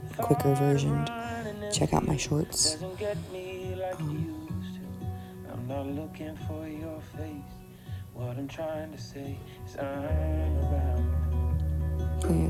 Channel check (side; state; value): both; identical; correlation 1.00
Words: quicker version, check out my shorts. I'm not looking for your face. What I'm trying to say is I'm around.